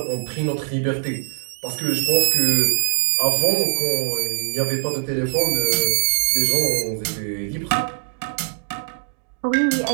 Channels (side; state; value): left; silent; digital silence